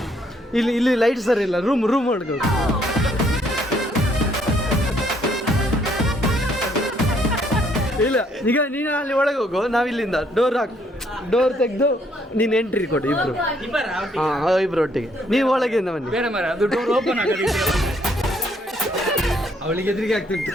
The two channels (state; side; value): normal; both; correlation 0.68